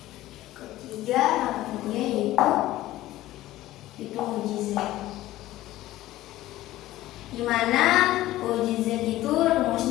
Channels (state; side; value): quieter; right; 15.7 dB